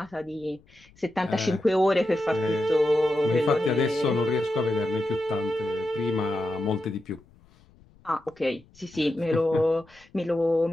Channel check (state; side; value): noise; left; rumble, 28 dB below the sound